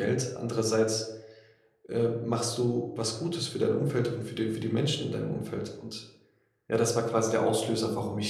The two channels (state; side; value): identical; both; correlation 1.00